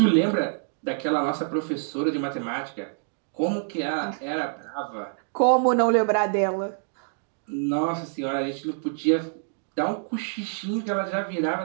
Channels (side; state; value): left; silent; digital silence